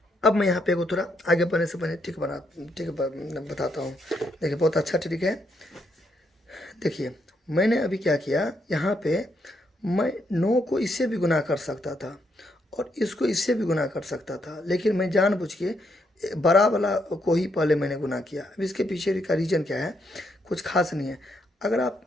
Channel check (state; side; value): normal; both; correlation 0.76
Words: अब मैं यहाँ पे एगो थोड़ा आगे बढ़ने से पहले ट्रिक बताता हूँ। देखिए बहुत अच्छा ट्रिक है। देखिए मैंने अभी क्या किया, यहाँ पे मैं 9 को इससे भी गुना कर सकता था और इसको इससे भी गुना कर सकता था, लेकिन मैं जानबूझ के बड़ा वाला को ही पहले मैंने गुना किया। अब इसके पीछे का रीज़न क्या है, कुछ खास नहीं है। अगर आप